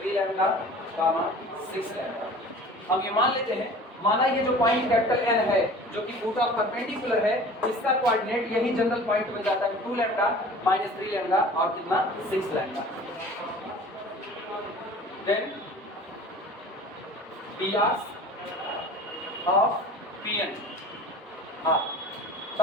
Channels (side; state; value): both; normal; correlation 0.43